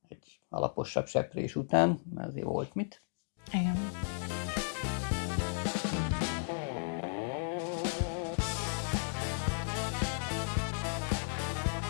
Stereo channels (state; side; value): silent; right; digital silence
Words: egy alaposabb seprés után, mert azért volt mit. Igen.